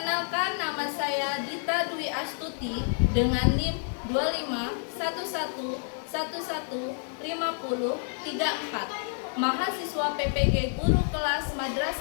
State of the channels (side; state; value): right; silent; 59 dB below the other